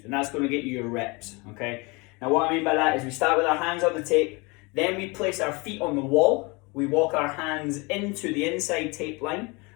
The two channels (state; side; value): quieter; right; 27.3 dB